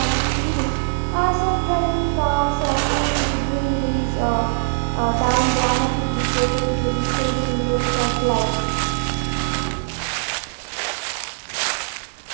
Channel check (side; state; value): left; silent; digital silence